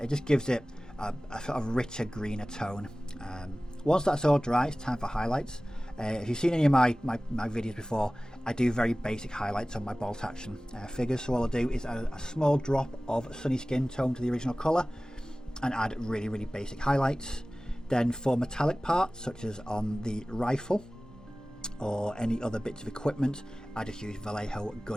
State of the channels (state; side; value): normal; both; correlation 0.98